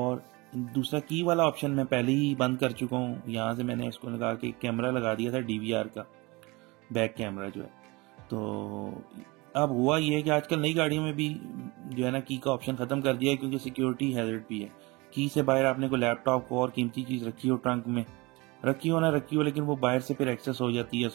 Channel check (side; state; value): left; quieter; 24.3 dB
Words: दूसरा की वाला ऑप्शन मैं पहले ही बंद कर चुका हूँ। यहाँ से मैंने इसको लगा के कैमरा लगा दिया था, DVR का बैक कैमरा जो है। तो अब हुआ ये है कि आजकल नई गाड़ियों में भी जो है ना, की का ऑप्शन खत्म कर दिया है, क्योंकि सिक्योरिटी हैजर्ड भी है। की से बाहर आपने को लैपटॉप को और कीमती चीज रखी हो ट्रंक में, रखी हो ना रखी हो, लेकिन वो बाहर से फिर एक्सेस हो जाती है,